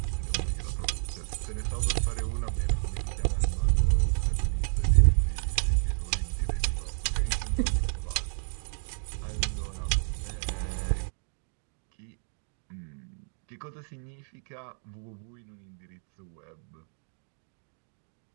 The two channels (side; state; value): left; silent; 57 dB below the other